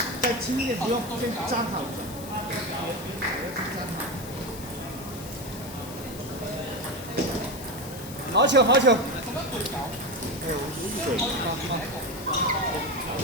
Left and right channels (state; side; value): noise; left; hiss, 14 dB below the sound